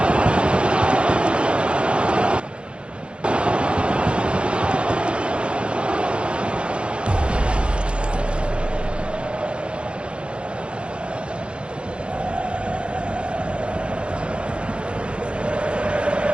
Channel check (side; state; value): left; late; 0.058 ms